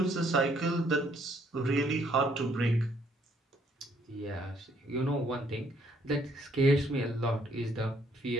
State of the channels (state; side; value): normal; both; correlation 0.66